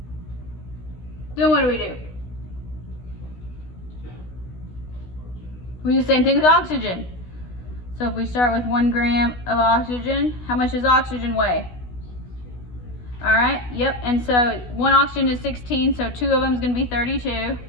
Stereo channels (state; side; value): late; right; 16 ms